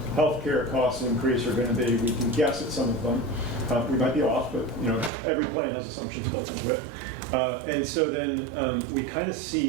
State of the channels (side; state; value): left; drops out; at 5.1 s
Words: healthcare costs increase are going to be. We can guess at some of them. We might be off, but you know, every plan has assumptions built into it. And so then we kind of